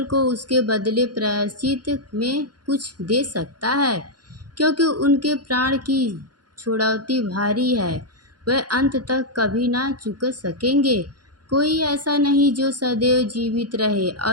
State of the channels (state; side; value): late; left; 0.69 ms